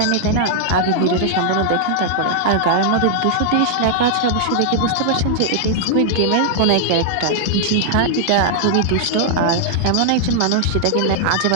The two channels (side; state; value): both; different; correlation -0.01